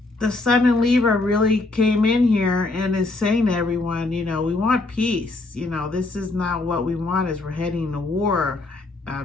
the sun in Libra really came in here and is saying to everyone, you know, we want peace. You know, this is not what we want as we're heading to war,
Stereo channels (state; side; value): quieter; right; 3.2 dB